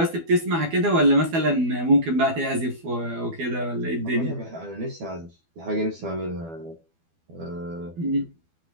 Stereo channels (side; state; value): left; late; 12 ms